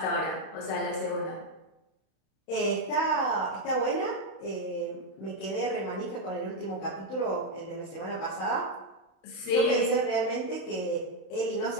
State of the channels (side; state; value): right; late; 31 ms